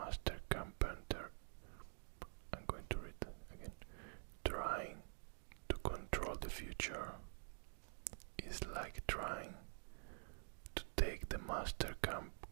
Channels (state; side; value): silent; left; digital silence